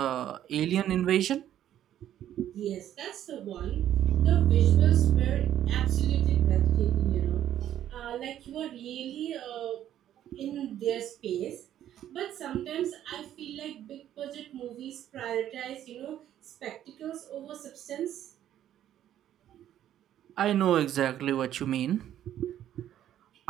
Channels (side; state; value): left; quieter; 11.4 dB